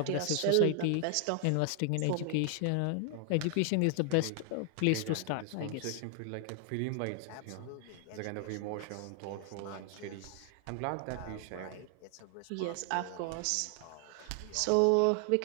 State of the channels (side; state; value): both; different; correlation 0.00